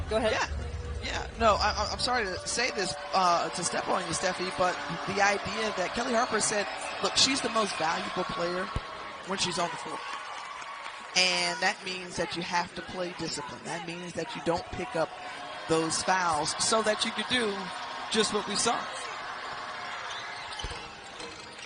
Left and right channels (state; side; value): identical; both; correlation 1.00